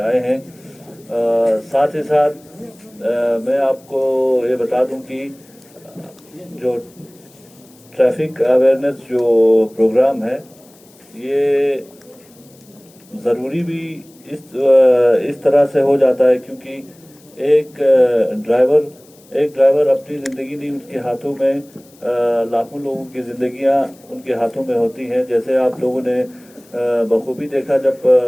आए हैं। साथ ही साथ मैं आपको ये बता दूँ कि जो ट्रैफिक अवेयरनेस जो प्रोग्राम है ये ज़रूरी भी इस तरह से हो जाता है क्योंकि एक ड्राइवर अपनी ज़िंदगी नहीं, उसके हाथों में लाखों लोगों की ज़िंदगियां उनके हाथों में होती हैं। जैसे आप लोगों ने बखूबी देखा जब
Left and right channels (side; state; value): left; noise; hiss, 28 dB below the sound